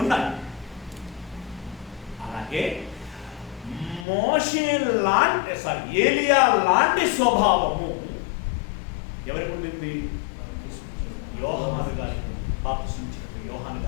ఉన్నాయి. అలాగే ఏలియా లాంటి స్వభావము ఎవరికి ఉండింది? యోహాను గారికి, బాప్తిస్మిచ్చిన యోహాను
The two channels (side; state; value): right; drops out; at 4.0 s